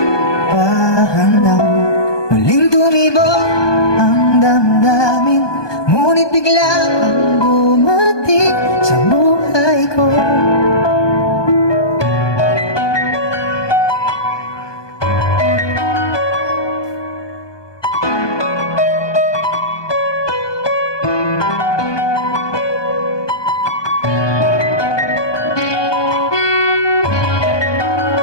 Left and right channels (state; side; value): late; right; 1.2 ms